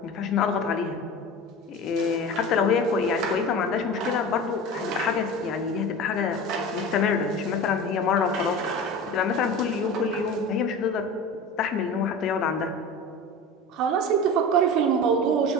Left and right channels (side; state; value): both; normal; correlation 0.32